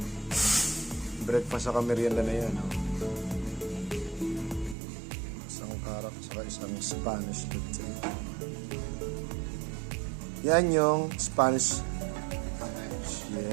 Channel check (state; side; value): drops out; left; at 4.8 s